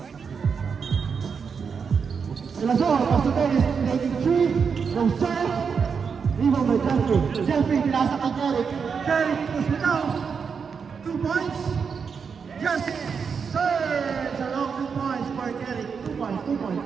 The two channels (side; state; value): left; quieter; 6.1 dB